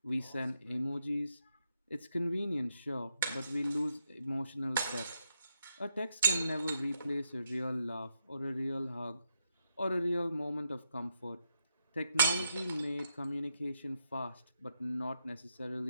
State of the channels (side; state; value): both; inverted; correlation -0.81